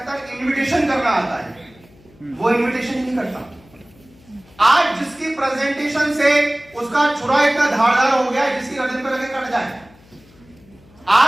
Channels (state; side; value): noise; left; hum, 27 dB below the sound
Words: इनविटेशन करना आता है, वो इनविटेशन ही नहीं करता। आज जिसकी प्रेजेंटेशन से उसका छुरा इतना धारदार हो गया है जिसकी गर्दन पे लगे कट जाए,